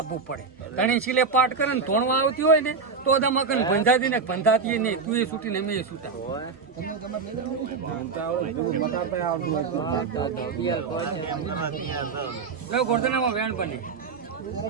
પડે. ઘણી સિલે પાટ કરે ને ધોણવા આવતી હોય ને તો દમાકન બંધાતી ને બંધાતી નહીં. તું એ છૂટી ને મેં એ છૂટા ગોરધનામાં વેણ બને.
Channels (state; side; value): quieter; left; 5.0 dB